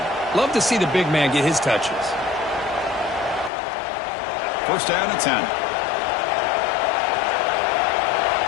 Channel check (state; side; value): drops out; right; at 3.5 s